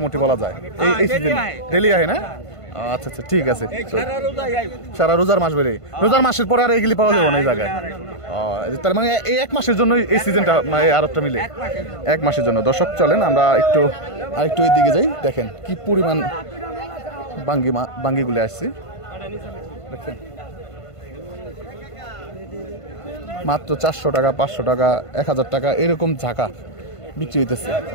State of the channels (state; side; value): late; right; 1.5 ms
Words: বলা যায় এই সিজনে। ডেলি আহে না? আচ্ছা আচ্ছা, ঠিক আছে। সারা রোজার মাস বেড়ে, রোজার মাসের পরে আর এগুলি পাওয়া যাবে না এই জায়গায়। তার মানে এই 1 মাসের জন্য এই সিজনটা, আরেকটা মিলে 1 মাসের জন্য। দর্শক চলেন আমরা আরেকটু এই দিকে যাই। দেখেন কি পরিমাণ বাঙ্গিগুলি আসছে, দেখছেন মাত্র 400 টাকা 500 টাকা 1000 টাকা এরকম ঝাঁকা বিক্রি হইতেছে।